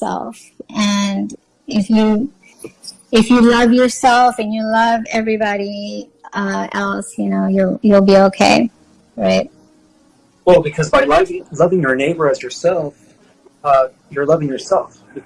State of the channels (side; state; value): both; identical; correlation 1.00